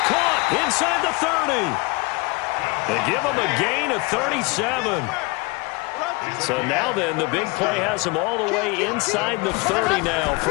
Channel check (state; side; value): quieter; right; 26.9 dB